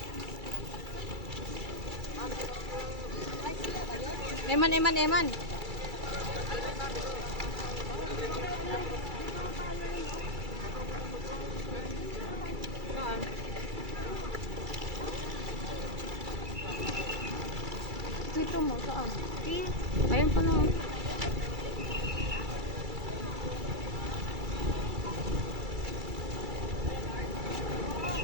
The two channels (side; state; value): left; late; 2.3 ms